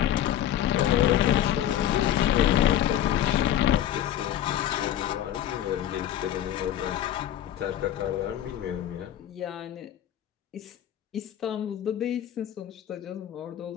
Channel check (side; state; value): right; quieter; 11.3 dB